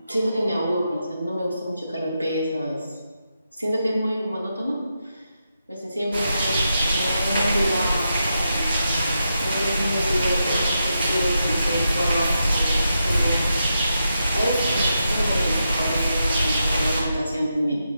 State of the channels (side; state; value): both; inverted; correlation -0.85